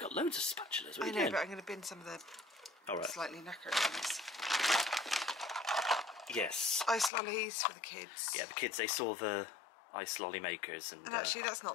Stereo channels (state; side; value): drops out; right; at 7.1 s